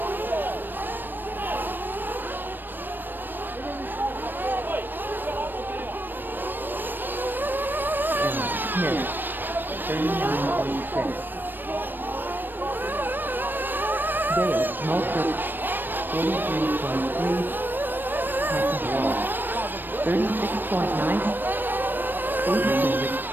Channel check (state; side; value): late; left; 0.093 ms